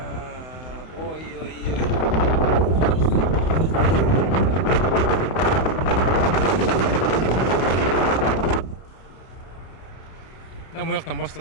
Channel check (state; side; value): late; right; 31 ms